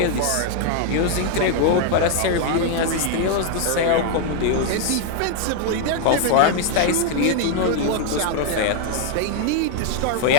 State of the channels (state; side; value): different; both; correlation 0.00